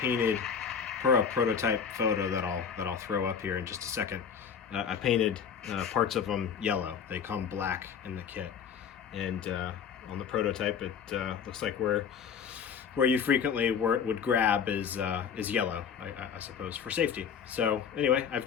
for a prototype photo that I'll throw up here in just a second. I painted parts of them yellow. They come black in the kit. And on the prototype, it looks like where you frequently would grab is yellow, I suppose, for safety. So anyway, I've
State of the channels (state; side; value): quieter; right; 7.1 dB